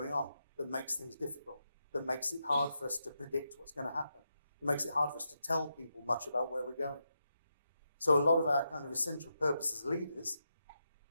on that makes things difficult, that makes it hard for us to predict what's going to happen. It makes it hard for us to tell people much about where we're going. So a lot of our kind of essential purpose as leaders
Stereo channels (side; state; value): both; inverted; correlation -0.85